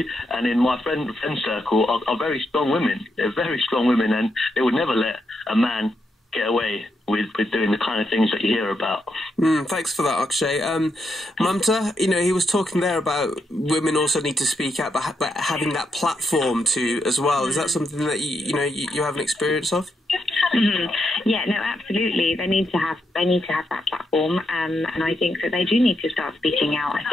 and in my friend circle are very strong women. They're very strong women, and they would never let a man get away with doing the kind of things that you hear about. Thanks for that, Akshay. Mumta, he was talking there about women also need to speak out, but having that platform to as well. Is that something that you have an experience of? Yeah, no, absolutely. They need to have that platform, and I think that they do need to start speaking out. I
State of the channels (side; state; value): both; normal; correlation 0.81